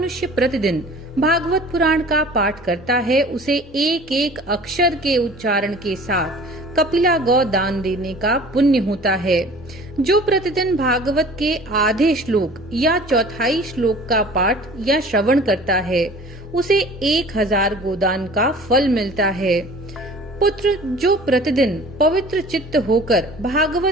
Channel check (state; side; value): normal; both; correlation 0.45